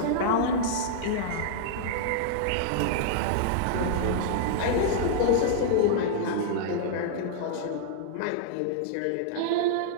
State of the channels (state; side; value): different; both; correlation -0.02